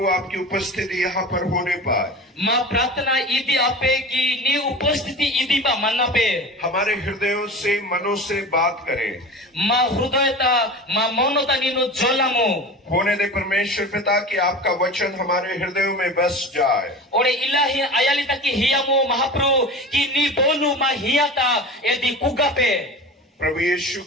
आपकी उपस्थिति यहाँ पर होने पर माँ प्रार्थना इदी आपे की नी उपस्थिति इदी बा मन्ना पे हमारे हृदयों से मनों से बात करें। माँ हृदयता माँ मौनता नीनु जोलामो होने दे परमेश्वर पिता कि आपका वचन हमारे हृदयों में बस जाए। ओरे इलाही आयालिता की हियामो महाप्रभु की नी बोलू माँ हियाता यदि कुगा पे प्रभु यीशु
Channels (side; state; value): both; normal; correlation 0.33